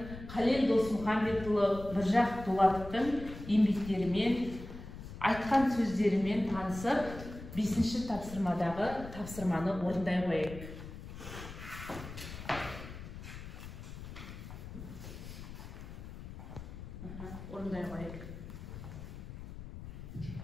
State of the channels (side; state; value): left; noise; rumble, 11 dB below the sound